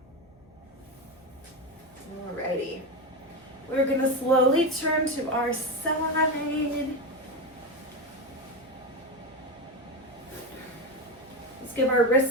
Alrighty. We're gonna slowly turn to our side. Let's give our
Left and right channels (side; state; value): left; noise; hum, 26 dB below the sound